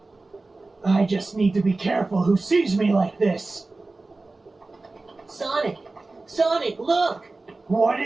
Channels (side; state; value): left; quieter; 3.3 dB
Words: I just need to be careful who sees me like this. Sonic! Sonic, look! What